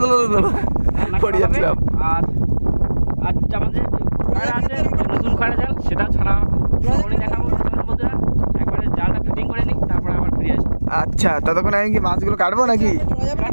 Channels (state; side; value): inverted; both; correlation -1.00